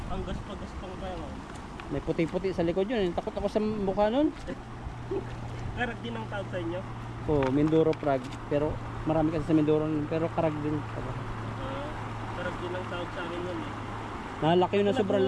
Ang gaspang pa yun. May puti-puti sa likod yun. Takot ako sa mukha nun. Karag din ang tawag sa inyo. Oh, Mindoro Frog. Pero Marami kasi sa Mindoro pero karag din. Karag din ang tawag sa amin yun eh. Nalaki yun na sobrang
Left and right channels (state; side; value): identical; both; correlation 1.00